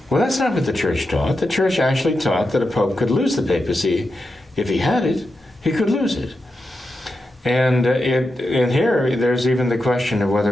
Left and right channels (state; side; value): normal; both; correlation 0.88